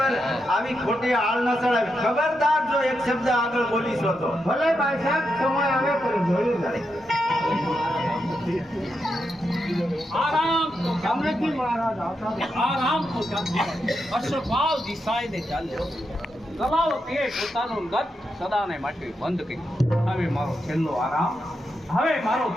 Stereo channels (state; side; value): normal; both; correlation 0.85